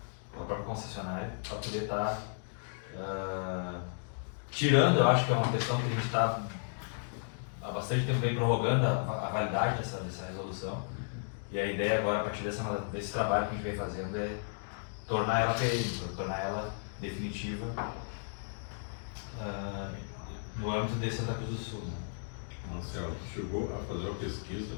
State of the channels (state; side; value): silent; right; digital silence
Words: a própria concessionária, para poder estar tirando, eu acho que é uma questão que a gente está há bastante tempo bem prorrogando a validade dessa resolução. E a ideia agora, a partir desse trabalho que a gente vem fazendo, é tornar ela perene, tornar ela definitiva no âmbito de Santa Cruz do Sul. Né? Marcelo, chegou a fazer uma pesquisa